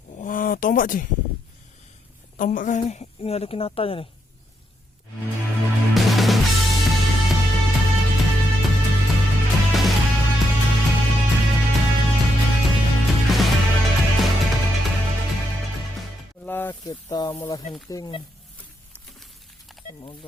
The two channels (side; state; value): both; normal; correlation 0.80